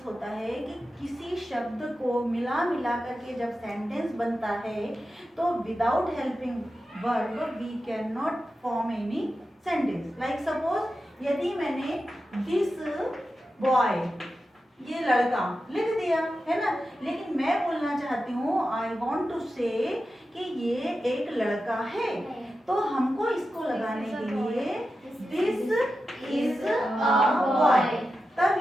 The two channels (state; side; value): normal; both; correlation 0.91